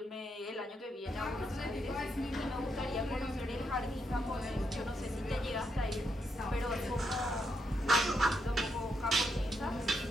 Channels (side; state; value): both; normal; correlation 0.80